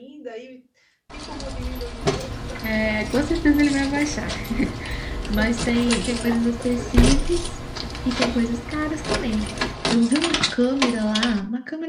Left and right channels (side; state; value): both; identical; correlation 1.00